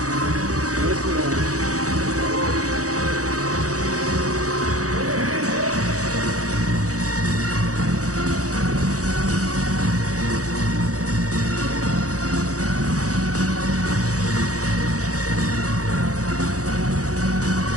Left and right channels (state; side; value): late; left; 0.66 ms